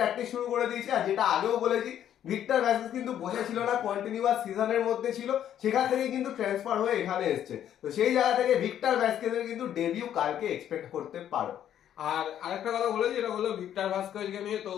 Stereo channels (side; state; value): right; quieter; 10.5 dB